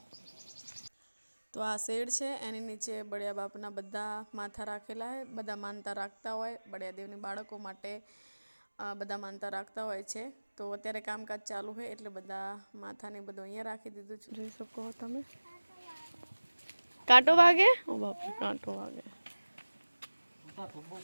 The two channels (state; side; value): inverted; both; correlation -1.00